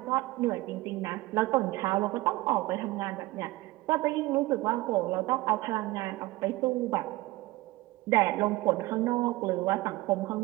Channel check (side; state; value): left; quieter; 19.4 dB